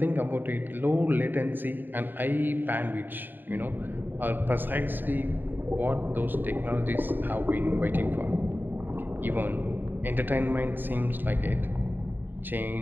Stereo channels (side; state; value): left; late; 0.092 ms